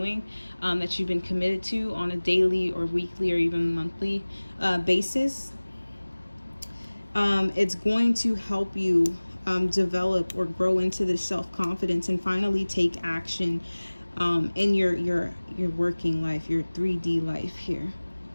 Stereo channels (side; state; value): both; inverted; correlation -1.00